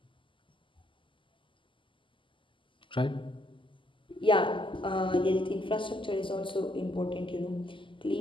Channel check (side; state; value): right; late; 0.25 ms